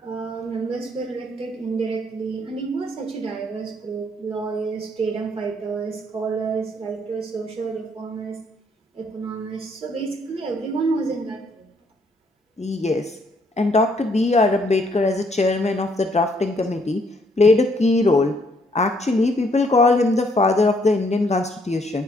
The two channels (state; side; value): normal; both; correlation 0.68